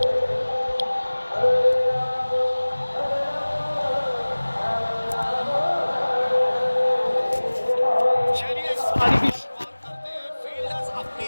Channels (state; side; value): inverted; both; correlation -1.00